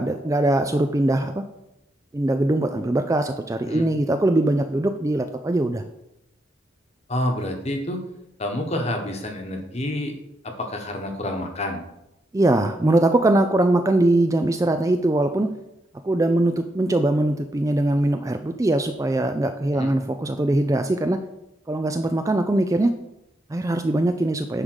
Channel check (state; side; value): normal; both; correlation 0.81